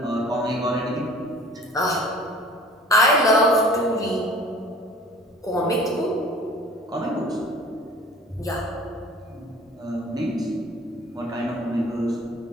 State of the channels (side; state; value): both; normal; correlation 0.47